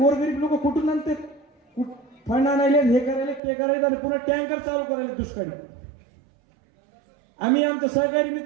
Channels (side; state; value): left; drops out; at 3.4 s